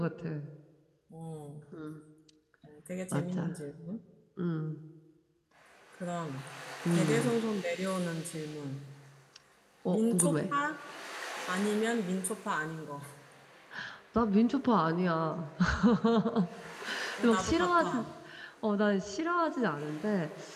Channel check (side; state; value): both; identical; correlation 1.00